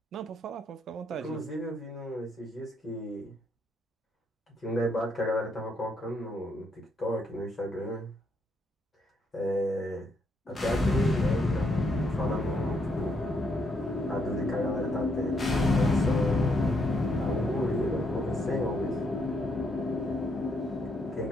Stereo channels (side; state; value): both; normal; correlation 0.74